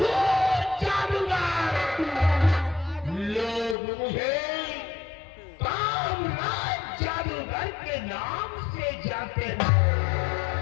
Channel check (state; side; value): drops out; right; at 3.8 s